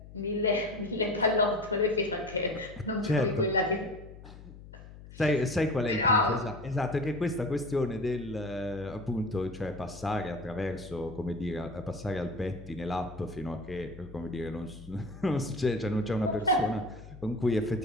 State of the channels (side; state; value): left; noise; hum, 16 dB below the sound